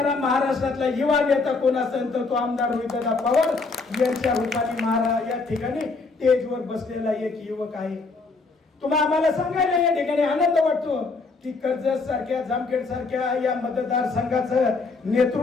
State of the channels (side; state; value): right; quieter; 4.0 dB